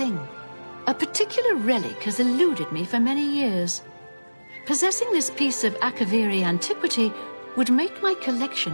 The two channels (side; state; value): both; inverted; correlation -1.00